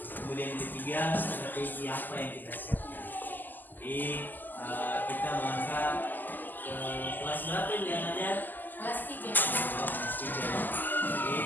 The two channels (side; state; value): right; late; 0.087 ms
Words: yang ketiga strategi apa yang kita siapkan. Jadi kita melangkah ke kelas berapa yang ada? Kelas 3. Kelas 3. Jadi